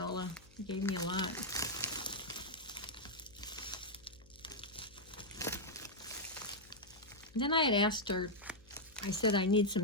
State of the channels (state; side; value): noise; left; hum, 26 dB below the sound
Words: You gave me a lot. Then I had asked her, I said I need